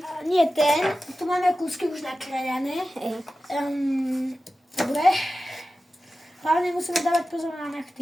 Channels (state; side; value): normal; both; correlation 0.94